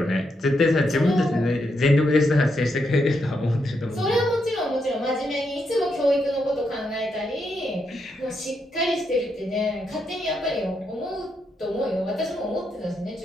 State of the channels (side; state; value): both; normal; correlation 0.81